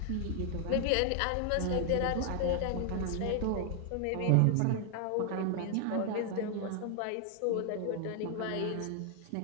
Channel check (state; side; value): different; both; correlation 0.00